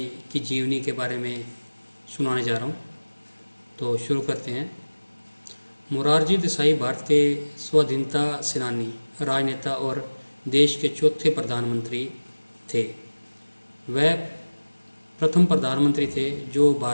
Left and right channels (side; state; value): both; inverted; correlation -1.00